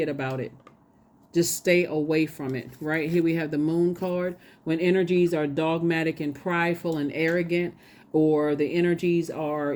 about it. Just stay away from it, right? Here we have the Moon card. When energies are dogmatic and prideful and arrogant, or the energies are,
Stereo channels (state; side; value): identical; both; correlation 1.00